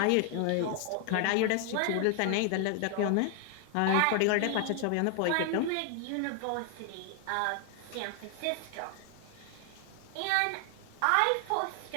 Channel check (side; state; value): both; different; correlation 0.00